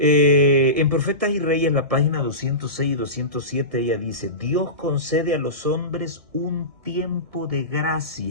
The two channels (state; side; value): late; left; 1.6 ms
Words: Profetas y Reyes, la página 206 y 207, ella dice: Dios concede a los hombres un tiempo de